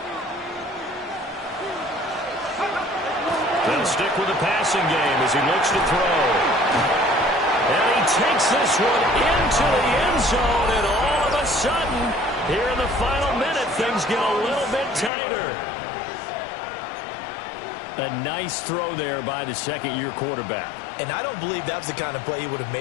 They'll stick with the passing game as he looks to throw. And he takes this one into the end zone, and all of a sudden, here in the final minute, things get a little bit tighter. A nice throw there by the 2nd-year quarterback. And I don't believe that was the kind of play he would have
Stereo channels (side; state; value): right; drops out; at 15.1 s